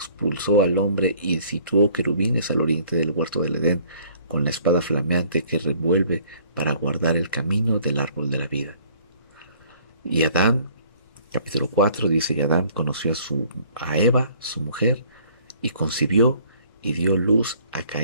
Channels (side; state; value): both; inverted; correlation -0.57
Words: al hombre y situó querubines al oriente del huerto del Edén, con la espada flameante que revuelve para guardar el camino del árbol de la vida. Y Adán, capítulo 4, dice: y Adán conoció a Eva, su mujer, y concibió y dio luz a